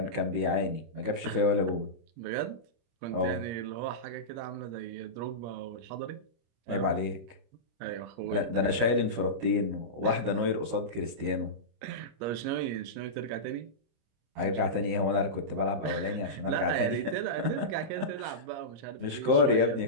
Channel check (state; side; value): late; left; 26 ms